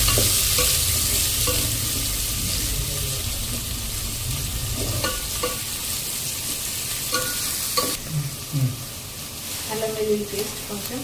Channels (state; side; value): identical; both; correlation 1.00